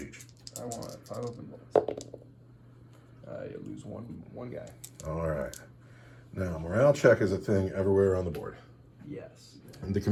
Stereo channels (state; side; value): identical; both; correlation 1.00